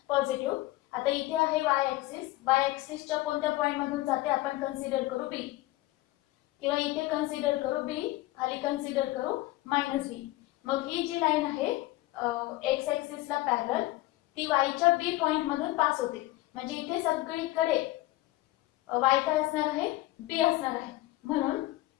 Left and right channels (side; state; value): right; quieter; 18.2 dB